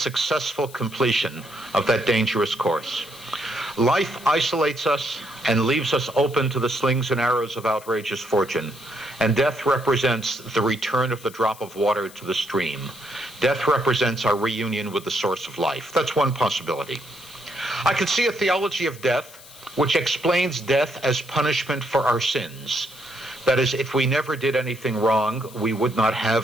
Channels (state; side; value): noise; left; hiss, 19 dB below the sound